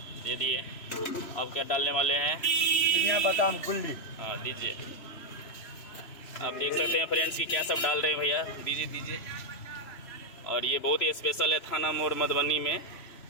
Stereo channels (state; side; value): late; right; 3.0 ms